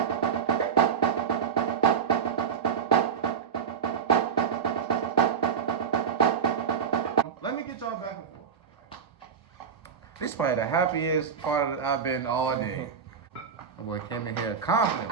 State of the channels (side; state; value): left; quieter; 7.0 dB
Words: Let me get y'all back and forth. This is probably the happiest part of I've been all day. My boy came in here